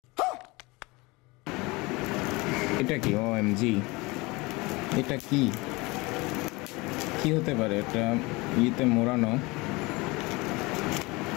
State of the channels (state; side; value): quieter; right; 24.0 dB